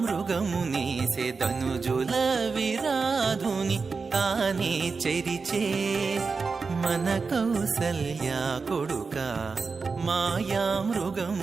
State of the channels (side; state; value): left; quieter; 4.7 dB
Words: మృగమునేసే ధనుజుల విరాధుని తానే చెరిచే మన కౌసల్య కొడుక మాయా